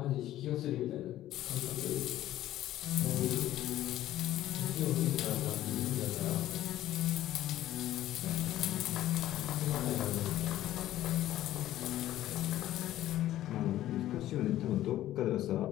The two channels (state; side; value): quieter; right; 13.7 dB